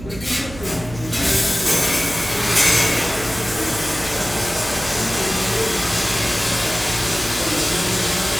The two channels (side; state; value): right; noise; hum, 14 dB below the sound